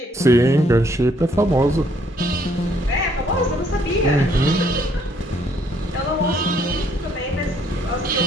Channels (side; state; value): both; normal; correlation 0.67